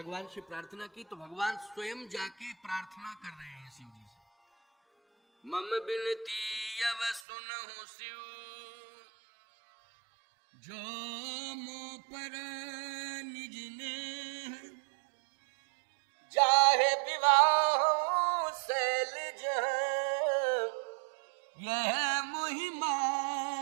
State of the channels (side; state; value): left; drops out; at 7.2 s